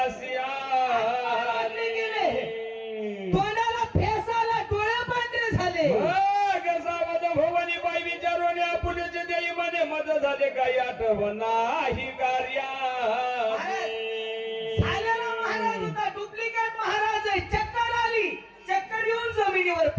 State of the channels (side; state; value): both; identical; correlation 1.00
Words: आले गेले. तोंडाला फेस आला, डोळे पांढरे झाले. सावध भवानी बाई विचारून पुढचे देई मध्ये मद झाले काही आठवण नाही कार्या झालेला महाराज होता, डुप्लिकेट महाराज आहे. चक्कर आली, चक्कर येऊन जमिनीवर